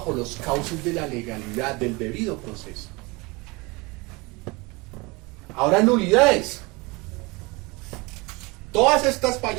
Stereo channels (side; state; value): left; quieter; 25.6 dB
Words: los cauces de la legalidad, del debido proceso. Ahora, nulidades. Todas estas